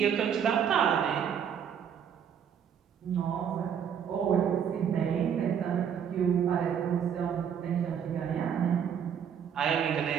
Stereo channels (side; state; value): left; quieter; 8.1 dB